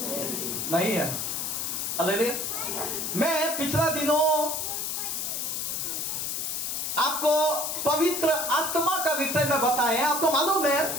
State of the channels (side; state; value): left; noise; hiss, 2 dB below the sound